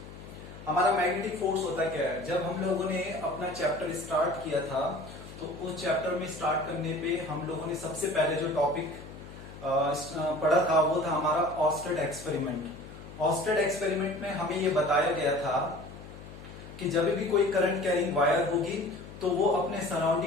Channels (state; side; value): noise; left; hum, 15 dB below the sound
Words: हमारा magnetic force होता क्या है? जब हम लोगों ने अपना chapter start किया था तो उस चैप्टर में स्टार्ट करने पे हम लोगों ने सबसे पहले जो टॉपिक पढ़ा था वो था हमारा ऑस्टेड एक्सपेरिमेंट. ऑस्टेड एक्सपेरिमेंट में हमें ये बताया गया था कि जब भी कोई करंट कैरिंग वायर होगी तो वो अपने